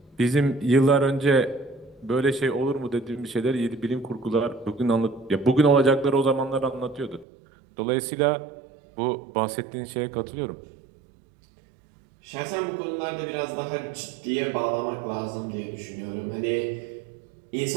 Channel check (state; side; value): drops out; left; at 7.2 s